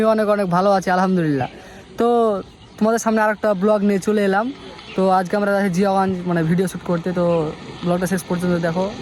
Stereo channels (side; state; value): both; identical; correlation 1.00